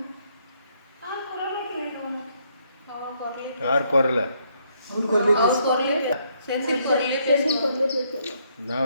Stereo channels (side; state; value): both; inverted; correlation -0.72